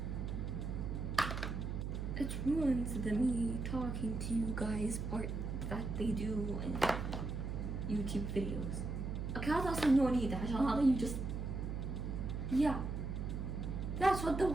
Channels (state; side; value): noise; right; hum, 3 dB below the sound